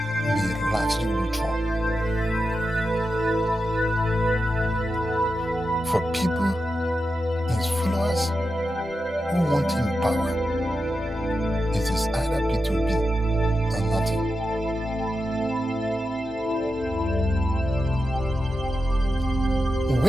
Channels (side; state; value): both; normal; correlation 0.89